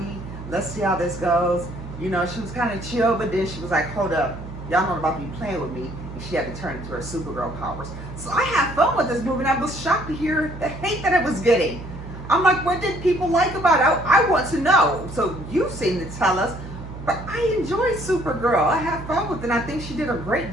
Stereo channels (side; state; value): right; noise; hum, 11 dB below the sound